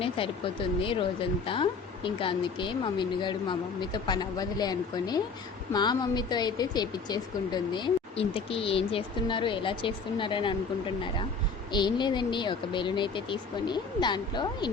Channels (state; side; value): quieter; right; 4.8 dB